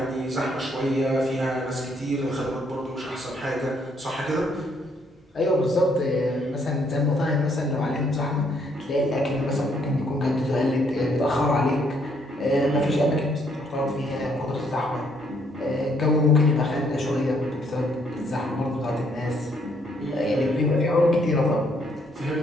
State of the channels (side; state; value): both; normal; correlation 0.70